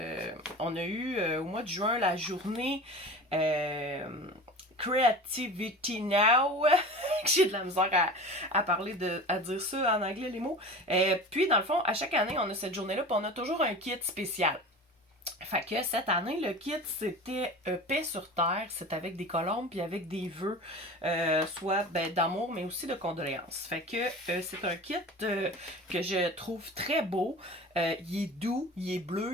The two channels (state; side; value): normal; both; correlation 0.35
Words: on a eu au mois de juin la journée Creativity Now. J'ai de la misère à parler à dire ça en anglais, les mots. Puis, dans le fond, à chaque année, on a cette journée-là, puis on a toujours un kit spécial. Fait que cette année, le kit, c'était paix sur terre. C'est avec des colombes puis avec des vœux, soit d'amour, mais aussi de condoléances. Fait que c'est un kit que je trouve très beau. Il est doux, il est